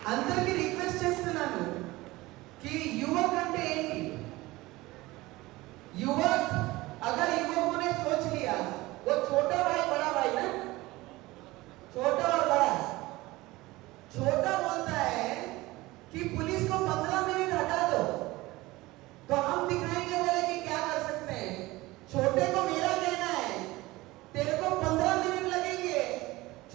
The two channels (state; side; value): quieter; left; 19.8 dB